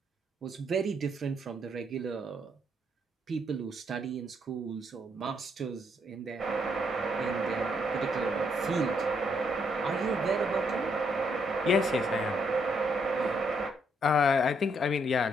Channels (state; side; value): normal; both; correlation 0.73